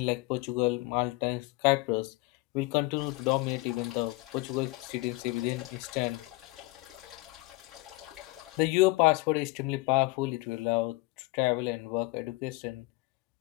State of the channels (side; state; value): right; quieter; 21.9 dB